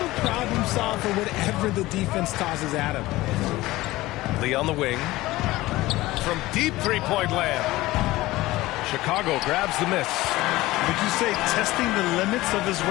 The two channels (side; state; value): right; quieter; 18.2 dB